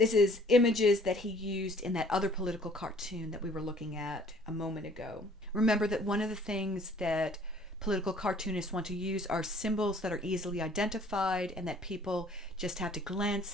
is images that he used in that other political cartoon that we were looking at a moment ago. Remember that one of the things that political cartoonists want to use are symbols that are easily identified and that people just have to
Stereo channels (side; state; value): both; normal; correlation 0.56